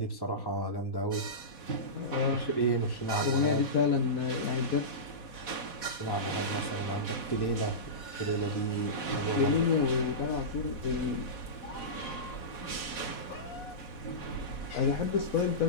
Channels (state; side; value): late; right; 4.1 ms